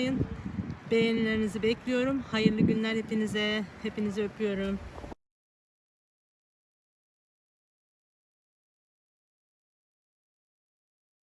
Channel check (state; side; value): identical; both; correlation 1.00